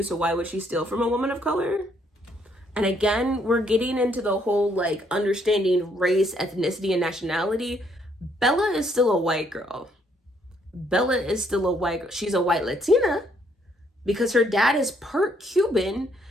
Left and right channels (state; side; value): normal; both; correlation 0.69